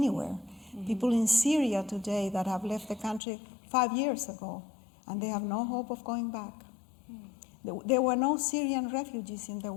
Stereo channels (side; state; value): right; drops out; at 3.2 s